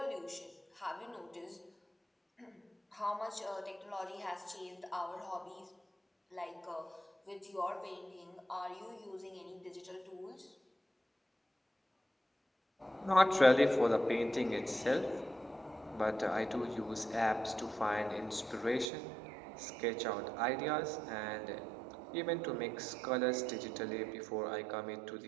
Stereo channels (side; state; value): left; drops out; at 18.9 s